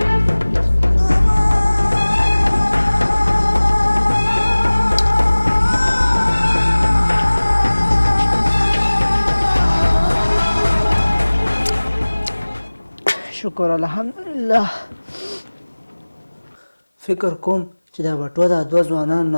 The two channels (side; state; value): both; inverted; correlation -1.00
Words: شکر الحمدلله فکر کوم چې دا بټوه دا دوه ځوانانو